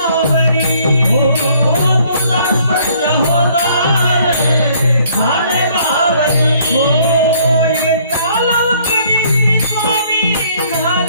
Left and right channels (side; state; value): both; inverted; correlation -0.61